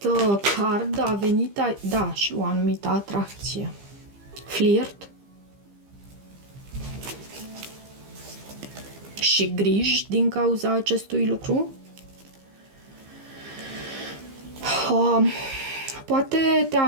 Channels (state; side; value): late; left; 15 ms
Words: card a venit, da, și o anumită atracție. Flirt și griji din cauza acestui lucru. Poate te